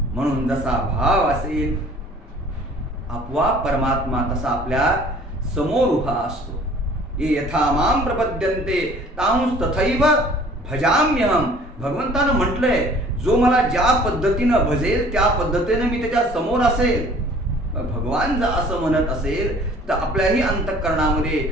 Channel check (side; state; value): both; normal; correlation 0.52